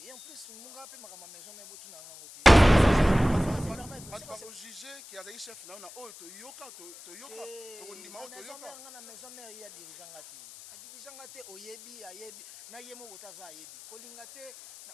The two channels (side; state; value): left; noise; hiss, 18 dB below the sound